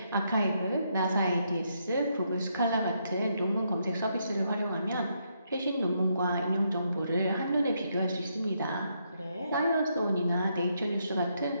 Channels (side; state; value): both; inverted; correlation -0.77